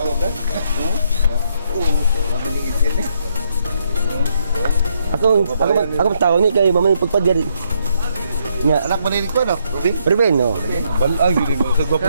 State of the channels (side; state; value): both; inverted; correlation -0.74